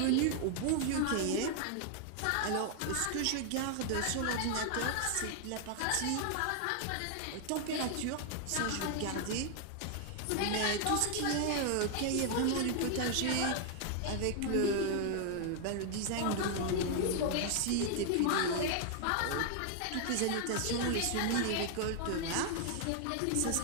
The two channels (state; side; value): different; both; correlation 0.00